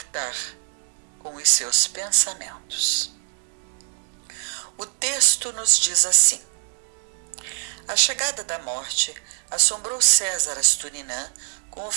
com os seus pensamentos. O texto nos diz assim: a chegada da morte assombrou César Asturinan com o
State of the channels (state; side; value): silent; left; digital silence